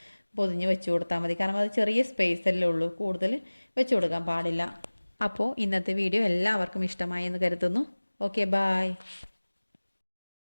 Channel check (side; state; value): both; inverted; correlation -1.00